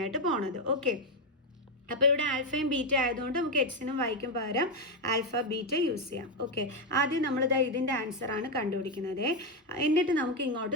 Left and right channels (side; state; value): both; normal; correlation 0.06